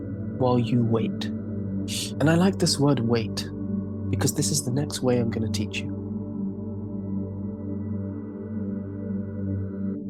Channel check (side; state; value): both; identical; correlation 1.00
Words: while you wait. And I like this word wait because this is the next way I'm going to teach you.